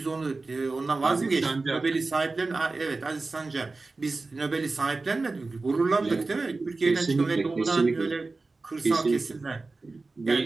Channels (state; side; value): quieter; left; 3.6 dB